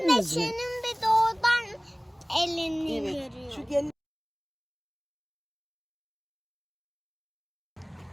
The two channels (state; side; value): identical; both; correlation 1.00